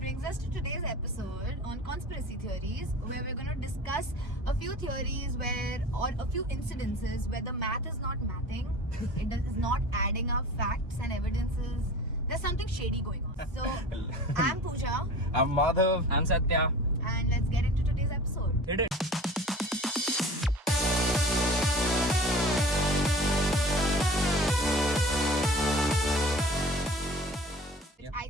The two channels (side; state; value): both; normal; correlation 0.40